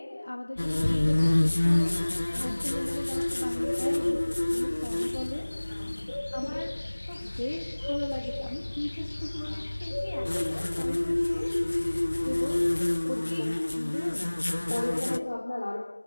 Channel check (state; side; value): inverted; both; correlation -1.00